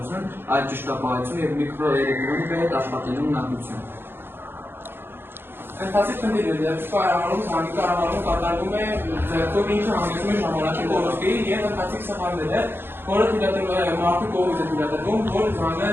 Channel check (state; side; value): late; left; 0.10 ms